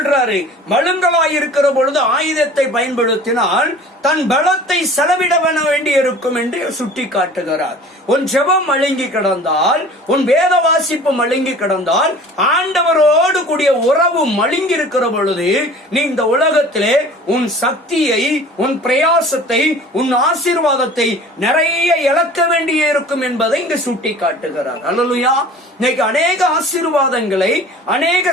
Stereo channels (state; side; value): normal; both; correlation 0.44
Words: மழுங்கலாய் இருக்கிற பொழுது ஆயுதத்தை பயன்படுத்தினால் தன் பலத்தை செலவிட வேண்டி இருக்கும் என்று சுட்டி காட்டுகிறார். உன் ஜெபம் மழுங்கி கிடந்தால், உன் வேத வாசிப்பு மழுங்கி கிடந்தால், ஆண்டவரோடு கூடிய உறவு மழுங்கி இருக்கிற பொழுது நீ இந்த உலகத்திலே உன் சக்தியை, உன் பிரயாசத்தை, உன் ஆசீர்வாதத்தை நிறைய இழக்க வேண்டிய இருக்கும் என்பதை இங்கு சுட்டி காட்டுகிறார். அல்லேலூயா. இன்னைக்கு அநேக ஆசீர்வாதங்களை,